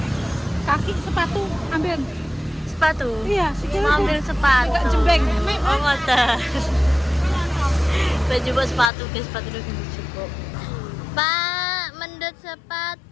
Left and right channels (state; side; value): drops out; right; at 8.9 s